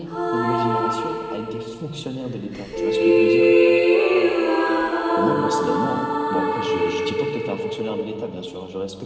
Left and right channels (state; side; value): identical; both; correlation 1.00